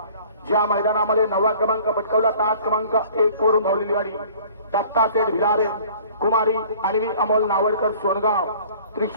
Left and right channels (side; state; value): both; inverted; correlation -0.50